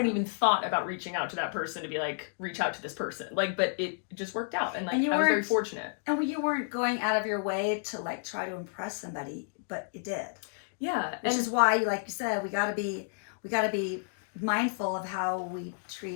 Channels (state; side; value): silent; right; digital silence